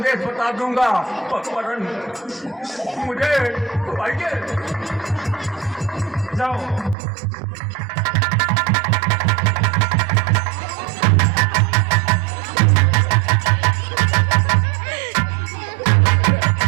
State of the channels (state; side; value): drops out; left; at 7.0 s